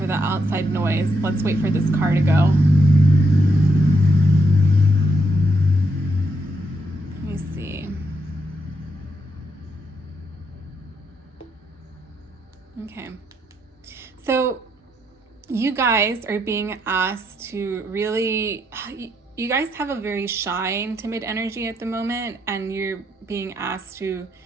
the outside noise. Let's wait for this car to go. Let me see. Okay. So you guys are being asked to really, you guys have a very shy and timid energy at the moment, and you're being asked to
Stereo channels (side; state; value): both; normal; correlation 0.78